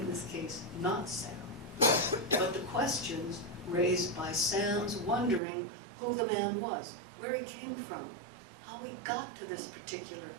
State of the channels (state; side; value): drops out; left; at 5.4 s